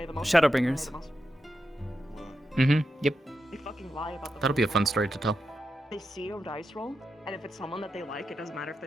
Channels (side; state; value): both; normal; correlation 0.87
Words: Shadowbringers. Yep. They fucking lie about the. That'll be a fun story to tell. They see your dice roll, and if it's someone that they like, it doesn't matter if